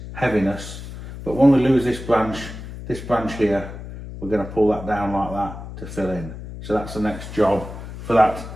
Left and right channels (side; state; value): left; noise; hum, 11 dB below the sound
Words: heaviness, but when we lose this branch here, we're going to pull that down like that to fill in. So that's the next job for that